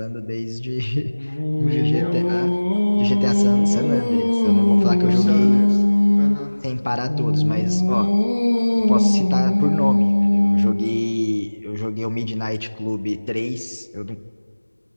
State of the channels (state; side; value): inverted; both; correlation -1.00